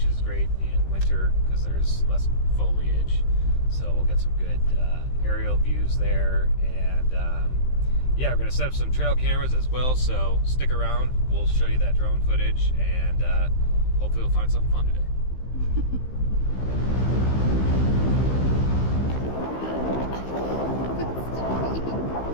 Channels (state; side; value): late; right; 15 ms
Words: is great in winter because there's less foliage. So we'll get some good aerial views there, and yeah, we're gonna set up some trail cameras as well. So stick around. We'll show you that drone footage, and hopefully we'll find something fun today.